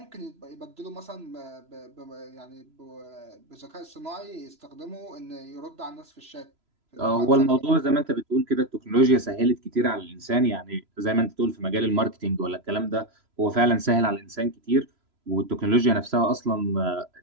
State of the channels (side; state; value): left; late; 3.0 ms